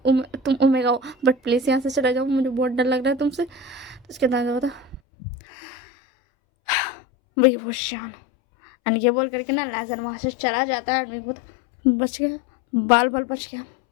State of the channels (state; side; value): drops out; right; at 5.0 s